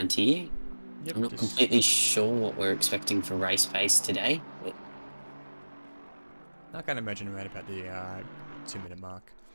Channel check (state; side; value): inverted; both; correlation -1.00